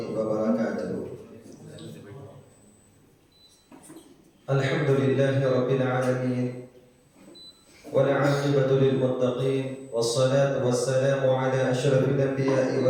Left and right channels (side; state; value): both; identical; correlation 1.00